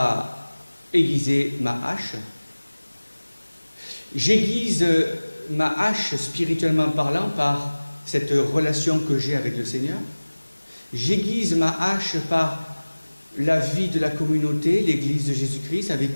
aiguisé ma hache. J'aiguise ma hache spirituellement parlant par cette relation que j'ai avec le Seigneur. J'aiguise ma hache par la vie de la communauté, l'Église de Jésus-Christ, avec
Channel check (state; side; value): inverted; both; correlation -1.00